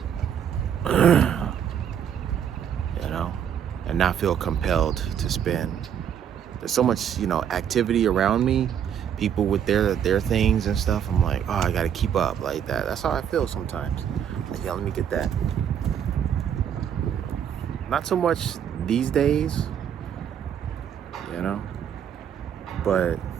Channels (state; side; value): quieter; left; 8.8 dB